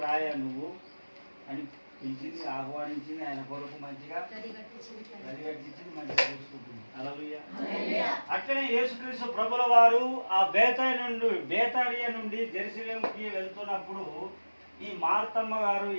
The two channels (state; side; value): inverted; both; correlation -1.00